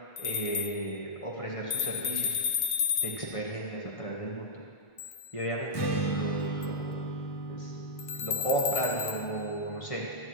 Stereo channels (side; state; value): right; late; 1.8 ms